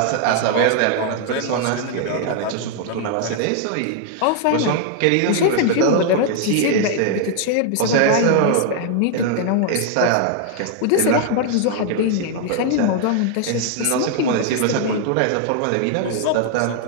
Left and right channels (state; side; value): different; both; correlation 0.00